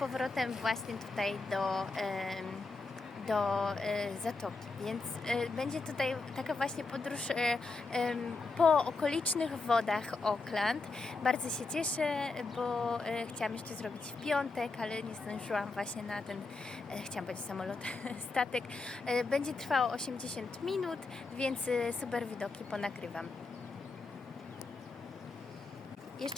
właśnie tutaj do zatoki, więc będzie tutaj taka właśnie podróż po okolicznych wodach Auckland. Bardzo się cieszę, bo chciałam jeszcze zrobić w piątek, ale nie zdążyłam właśnie na ten, chciałam powiedzieć samolot, statek. Będzie trwało 80 minut, więc super widoki ponagrywam.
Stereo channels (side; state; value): right; quieter; 3.8 dB